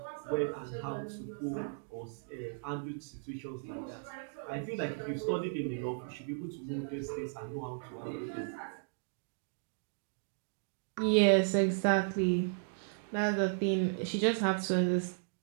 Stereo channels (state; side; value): silent; left; digital silence